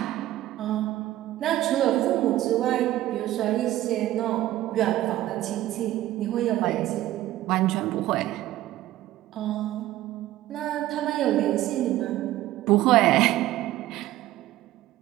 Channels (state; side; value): quieter; left; 14.9 dB